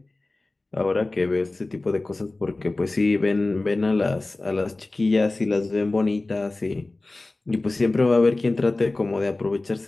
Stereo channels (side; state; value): right; quieter; 3.0 dB